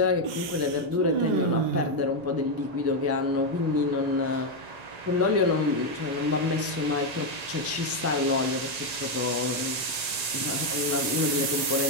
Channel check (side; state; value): left; late; 1.9 ms